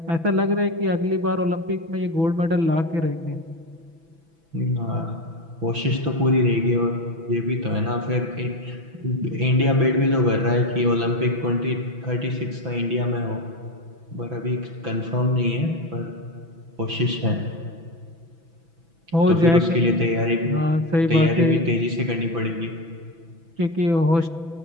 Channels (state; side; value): late; left; 6.0 ms